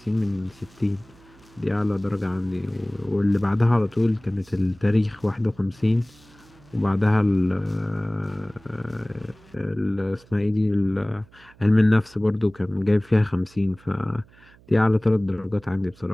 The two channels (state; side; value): noise; right; hum, 27 dB below the sound